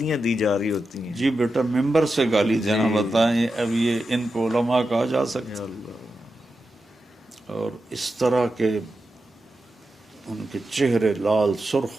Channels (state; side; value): normal; both; correlation 0.90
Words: دی جا رہی ہوتی ہیں. جی بیٹا، ممبر سے گالی دینا بتائیں، اب یہ ان کو علماء کہا جا سکتا؟ اور اس طرح کے ان کے چہرے لال